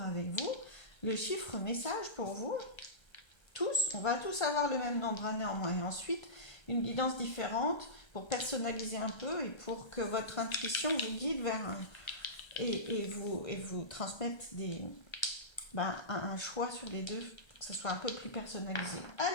avec vous le chiffre message pour vous. Tous, on va tous avoir le même nombre néanmoins. Et ensuite, une guidance différente pour personnaliser un peu et pour que votre intuition vous guide vers et vous transmette un choix sur les deux, pour que ce soit un peu plus personnalisé.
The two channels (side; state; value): right; late; 1.3 ms